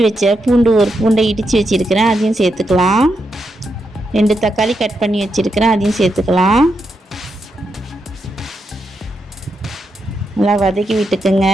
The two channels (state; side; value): normal; both; correlation 0.83